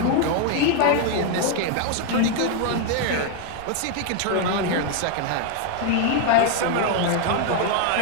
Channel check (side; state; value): both; different; correlation 0.00